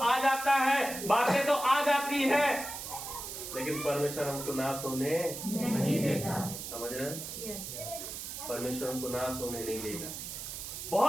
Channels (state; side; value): noise; right; hiss, 8 dB below the sound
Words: जाता है, बातें तो आ जाती है, लेकिन परमेश्वर हमको नाश होने नहीं देता। समझ रहे हैं? परमेश्वर हमको नाश होने नहीं देगा।